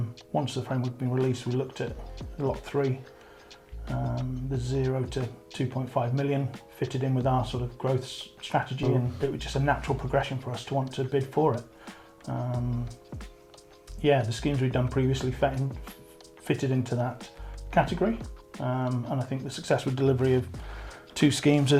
Once the framework had been released, we looked at lot 3, the 0 to 2.5 million, fitted in with our sort of growth strategy, and it was just a natural progression for us to want to bid for it. The schemes we'd done previously fitted into that category, and I think the successful delivery of 2 schemes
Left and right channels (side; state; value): both; identical; correlation 1.00